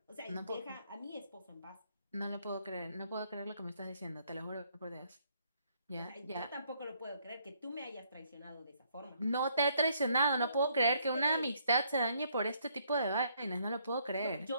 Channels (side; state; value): both; inverted; correlation -0.69